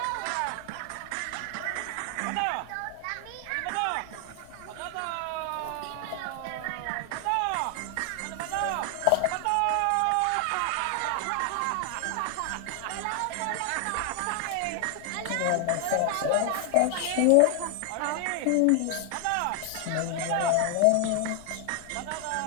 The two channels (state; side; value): different; both; correlation 0.00